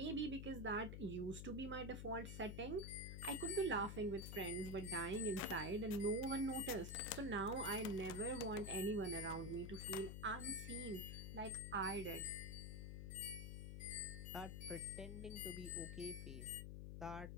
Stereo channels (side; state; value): left; noise; hum, 6 dB below the sound